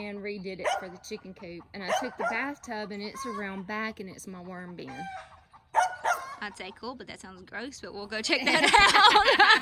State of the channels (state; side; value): identical; both; correlation 1.00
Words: redid it for the chicken coop. And I took the bathtub and it's around back and it's my worm bin. I'd say cool, but that sounds gross, but we'll go check that